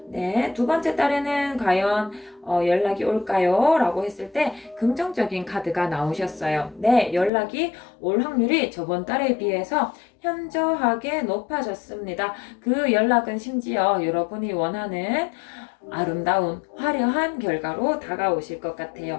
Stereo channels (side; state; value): right; drops out; at 7.3 s